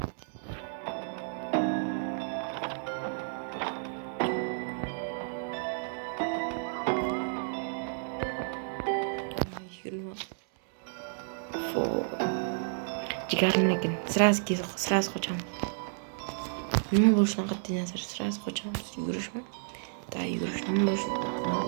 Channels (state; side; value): silent; left; digital silence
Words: Jigarim lekin sразу qochamiz. Nima bo'lishidan qat'iy nazar sразу qochamiz. Yugurishmi? Da yugurish nima bo'lishi?